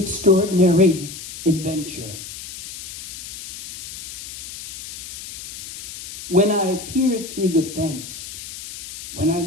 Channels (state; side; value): noise; left; hiss, 11 dB below the sound